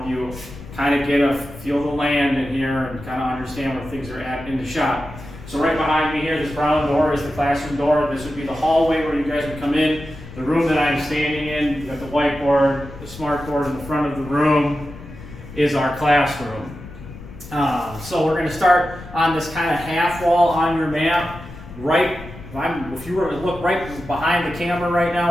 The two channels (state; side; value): noise; left; rumble, 15 dB below the sound